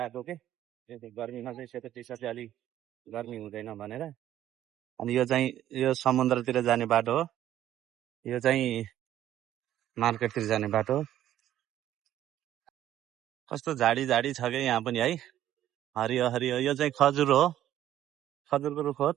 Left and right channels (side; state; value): left; quieter; 12.2 dB